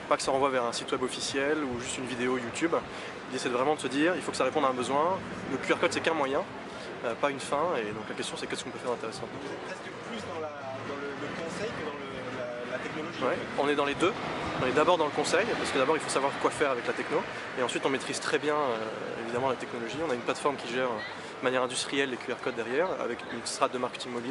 Pas que ça renvoie vers un site web officiel ou juste une vidéo YouTube. L'idée c'est vraiment de se dire il faut que ça réponde à un besoin. Le QR code c'est qu'un moyen, pas une fin, et donc la question c'est qu'est-ce qu'on peut faire d'intéressant. Vous êtes presque plus dans le conseil que dans la technologie. Ouais, on est dans les deux. On est d'abord dans le conseil, parce que d'abord il faut savoir quoi faire avec la techno, et ensuite on maîtrise très bien évidemment la technologie. On a une plateforme qui gère de manière industrielle les QR codes derrière, avec une strate de marketing mobile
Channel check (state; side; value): identical; both; correlation 1.00